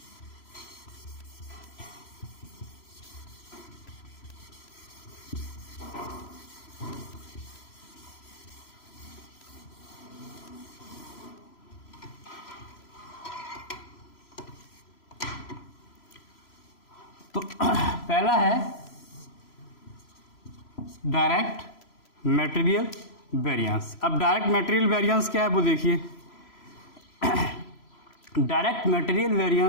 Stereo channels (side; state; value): right; late; 3.0 ms